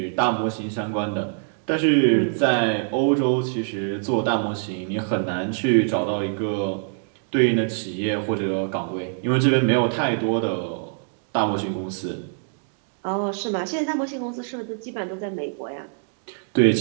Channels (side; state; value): left; silent; digital silence